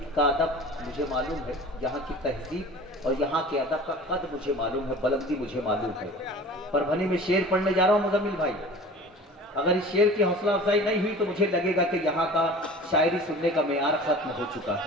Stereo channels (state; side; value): normal; both; correlation 0.41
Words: का अदब मुझे मालूम है, यहाँ की तहजीब और यहाँ के अदब का कद मुझे मालूम है, बुलंदी मुझे मालूम है। परभनी में शेर पढ़ने जा रहा हूँ मुजम्मिल भाई, अगर इस शेर की हौसला अफजाई नहीं हुई तो मुझे लगेगा कि यहाँ का शायरी सुनने का मेयार खत्म हो चुका